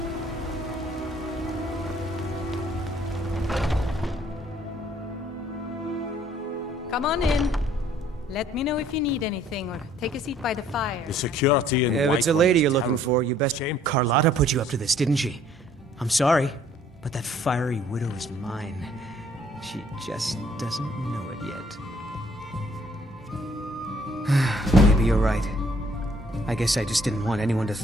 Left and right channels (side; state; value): both; normal; correlation 0.61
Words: Come on in. Let me know if you need anything, or take a seat by the fire. The security in If it's a lady you're looking for, you best... Carlotta put you up to this, didn't she? I'm sorry, but that fiery widow is mine. She just doesn't know it yet. Maybe you're right. I guess I just didn't want anyone to